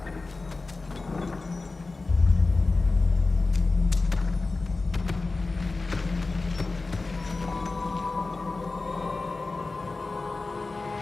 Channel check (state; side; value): quieter; right; 3.6 dB